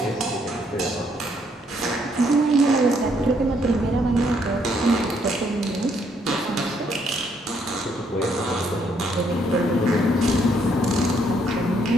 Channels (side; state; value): both; normal; correlation 0.70